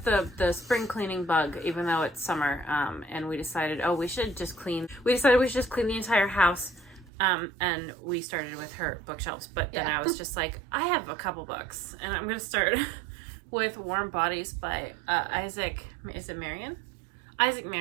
the spring cleaning bug, even though it's summer, and we decided, we should just clean the entire house, and we started with her bookshelves, but then I was just like, I have a couple books, and I'm going to start with Warm Bodies by Isaac Marion? Isaac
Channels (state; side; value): drops out; left; at 7.1 s